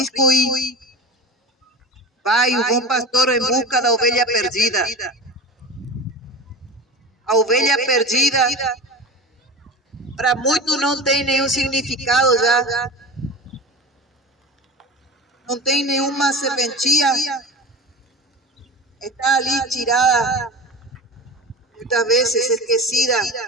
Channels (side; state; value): both; normal; correlation 0.31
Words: e vai o bom pastor em busca da ovelha perdida. A ovelha perdida, para muitos não tem nenhum significado já. Não tem nenhuma serventia. Está ali tirada, muitas vezes esquecida.